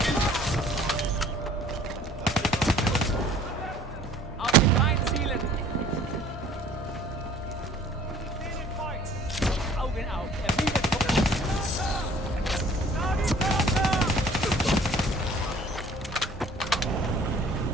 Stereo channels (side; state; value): both; normal; correlation 0.52